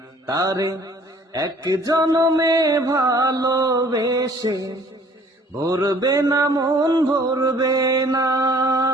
তারে এক জনমে ভালোবেসে ভরবে না মন, ভরবে না।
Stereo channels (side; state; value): both; normal; correlation 0.55